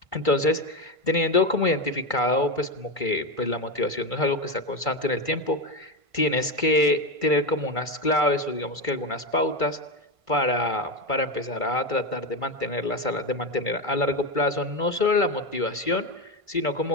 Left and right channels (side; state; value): left; late; 1.5 ms